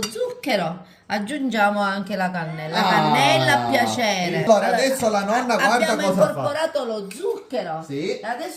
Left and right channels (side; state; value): both; identical; correlation 1.00